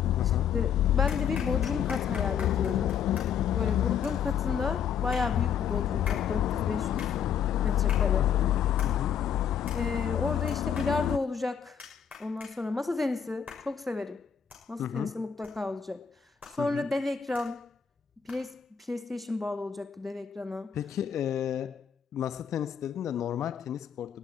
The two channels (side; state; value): right; quieter; 7.8 dB